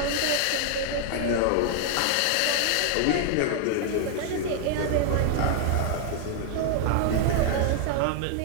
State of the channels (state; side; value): different; both; correlation 0.00